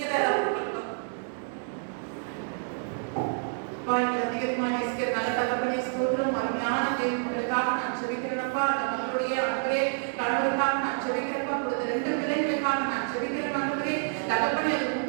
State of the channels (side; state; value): left; silent; digital silence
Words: தான் அதிகமாக நேசிக்கிற நல்ல தகப்பனே ஸ்தோத்திரம். அருமையான தேவனுக்காக நான் செபிக்கிறேன்ப்பா. அந்த மகளுடைய அன்பரே கணவருக்காக நான் செபிக்கிறேன்ப்பா. கொடுத்த 2 பிள்ளைகளுக்காக நான் செபிக்கிறேன் ஆண்டவரே. தகப்பனே அது